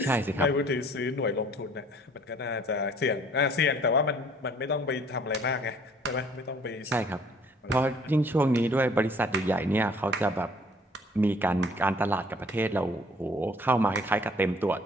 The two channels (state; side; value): normal; both; correlation 0.56